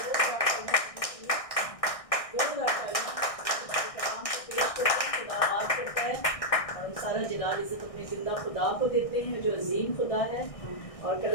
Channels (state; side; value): late; right; 1.6 ms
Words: सारा जलाल इज़्ज़त अपने ज़िंदा खुदा को देते हैं जो अजीम खुदा है। और